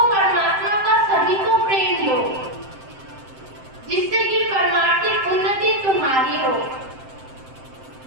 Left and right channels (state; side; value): late; left; 7.7 ms